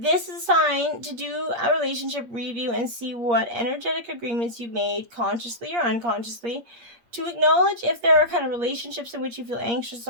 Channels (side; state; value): left; late; 8.5 ms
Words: is a sign to do a relationship review and see what energetic agreements you made, consciously or unconsciously, to acknowledge if there are kind of relationships in which you feel anxious